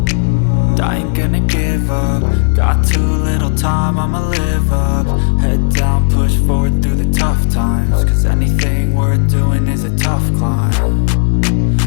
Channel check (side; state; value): right; silent; 67 dB below the other